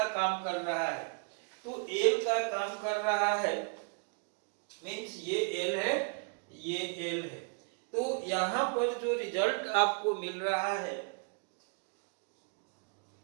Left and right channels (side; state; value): left; quieter; 39.3 dB